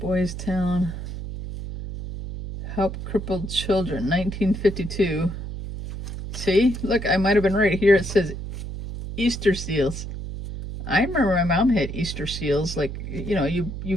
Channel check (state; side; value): noise; right; hum, 7 dB below the sound